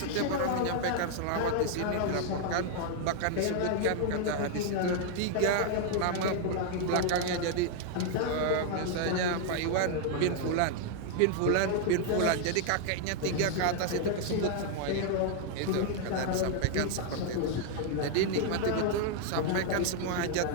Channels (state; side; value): different; both; correlation 0.00